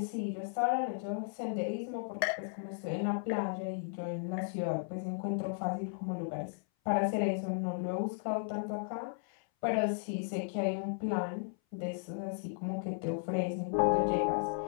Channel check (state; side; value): silent; right; 54 dB below the other